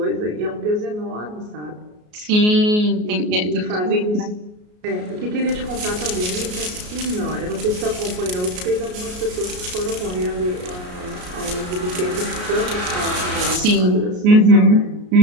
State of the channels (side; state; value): left; late; 33 ms